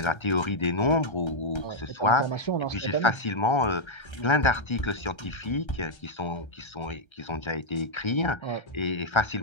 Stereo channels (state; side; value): late; right; 1.3 ms